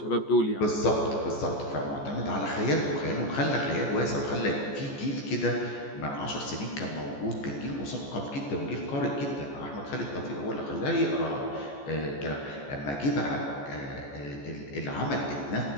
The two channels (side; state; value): right; late; 14 ms